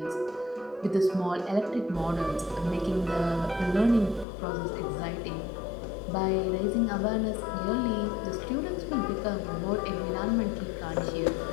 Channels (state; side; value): drops out; right; at 4.2 s